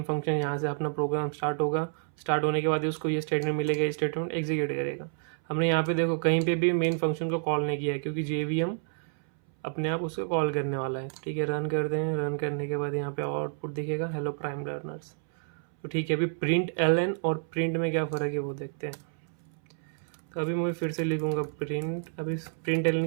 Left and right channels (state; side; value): silent; left; 58 dB below the other